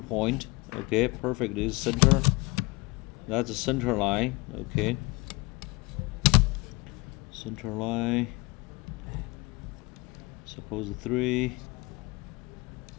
Okay, perfect. This is center. That's the center line. Okay. Center line. Suppose 3.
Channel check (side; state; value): right; quieter; 24.9 dB